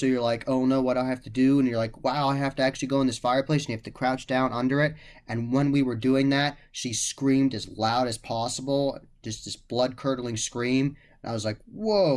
you're like, oh no, what do I have to do? And you're like, wow, I have to actually go in this fireplace, and you have to crouch down under it. And when we were doing that, she screamed as loud as possible, just this blood curdling scream. And I was like,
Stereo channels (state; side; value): identical; both; correlation 1.00